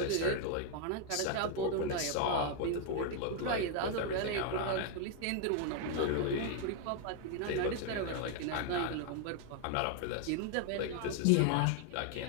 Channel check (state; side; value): different; both; correlation 0.00